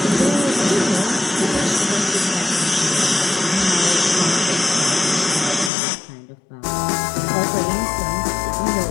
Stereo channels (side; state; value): right; drops out; at 5.7 s